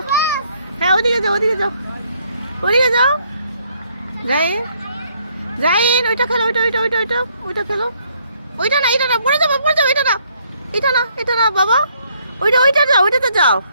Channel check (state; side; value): inverted; both; correlation -0.68